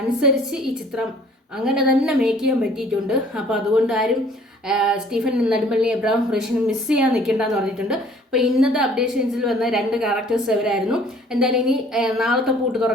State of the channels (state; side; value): normal; both; correlation 0.55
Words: അനുസരിച്ച് ഈ ചിത്രം അങ്ങനെ തന്നെ മേക്ക് ചെയ്യാൻ പറ്റിയിട്ടുണ്ട്. അപ്പോൾ അതുകൊണ്ട് ആരും സ്റ്റീഫൻ നെടുമ്പള്ളി, എബ്രഹാം ഖുറേഷിനെ മിസ് ചെയ്യാൻ നിൽക്കേണ്ടെന്ന് പറഞ്ഞിട്ടുണ്ട്. അപ്പോൾ ഇന്നത്തെ അപ്ഡേഷൻസിൽ വന്ന 2 ക്യാരക്ടേഴ്സ് അവരായിരുന്നു. എന്തായാലും ഇനി നാളത്തെ പൂട്ട്